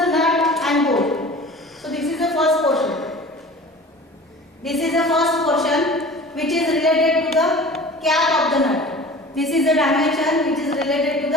nut and bolt, so this is the first portion. This is the first portion which is related to the cap of the nut. This is the dimension which is related to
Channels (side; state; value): both; normal; correlation 0.40